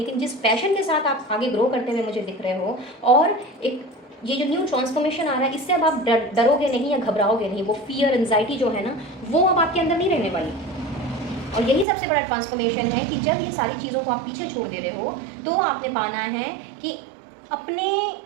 जिस पैशन के साथ आप आगे ग्रो करते हुए मुझे दिख रहे हो और एक ये जो न्यू ट्रांसफॉर्मेशन आ रहा है, इससे अब आप डरोगे नहीं या घबराओगे नहीं। वो फियर एंजाइटी जो है ना वो अब आपके अंदर नहीं रहने वाली। और यही सबसे बड़ा ट्रांसफॉर्मेशन है कि जब ये सारी चीज़ों को आप पीछे छोड़ दे रहे हो तो आपने पाना है कि अपने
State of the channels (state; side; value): drops out; left; at 11.9 s